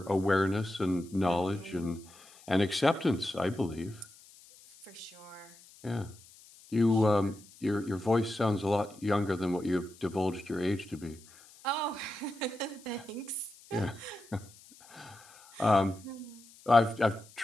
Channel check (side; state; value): left; noise; hiss, 23 dB below the sound